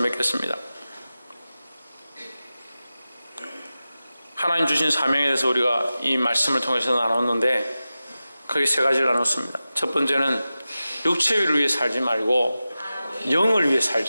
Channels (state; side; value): inverted; both; correlation -0.94